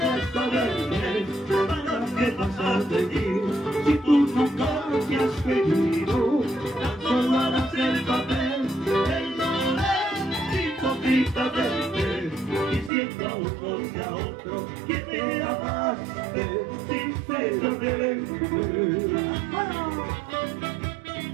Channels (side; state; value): left; drops out; at 12.9 s